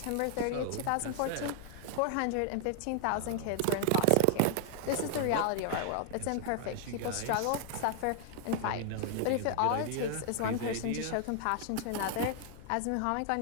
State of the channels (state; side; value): different; both; correlation 0.00